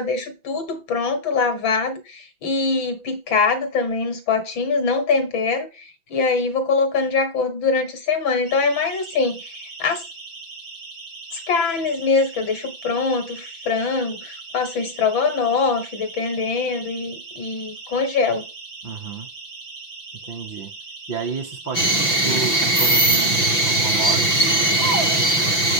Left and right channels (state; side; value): late; right; 5.9 ms